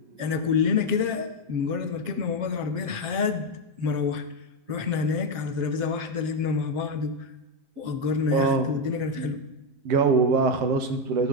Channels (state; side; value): late; left; 7.4 ms